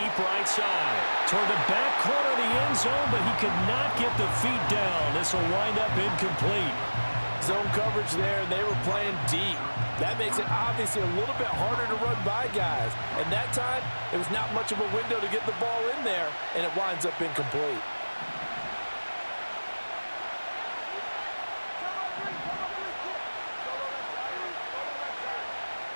right side. Toward the back corner of the end zone, but he could not get the feet down. This will wind up incomplete. Zone coverage there, and they were playing deep. That makes it obviously a little bit harder to run by guys. And that time, it was not much of a window to get the ball in there, and it winds up incomplete.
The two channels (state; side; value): inverted; both; correlation -1.00